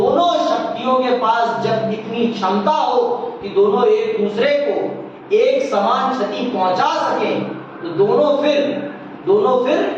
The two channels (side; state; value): both; identical; correlation 1.00